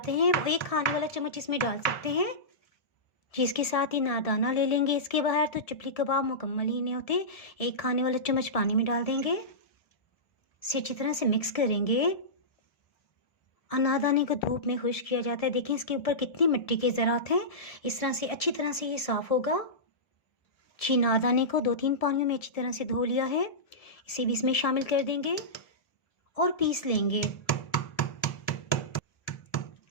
हैं वो 1 खाने वाला चम्मच इसमें डाल सकते हैं। जी इसके साथ ही नारदाना ले लेंगे। इसके बाहर तो चपली कबाब मुकम्मल ही नहीं होते। 1 खाने वाला चम्मच पानी में डाल देंगे। इसे अच्छी तरह से मिक्स करेंगे। अनारदाने को धूप में खुश्क किया जाता है। देखिए इसके ऊपर कितनी मिट्टी के ज़रात हैं। इस तरह से अच्छी तरह से ये साफ़ होगा। जी अनारदाने को 2-3 पानियों में अच्छी तरह से धो लिया है। इसे भी इसमें शामिल कर देंगे और पीस लेंगे।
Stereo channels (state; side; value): late; right; 1.7 ms